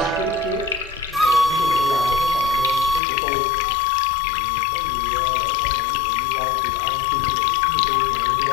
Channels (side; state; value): right; drops out; at 3.0 s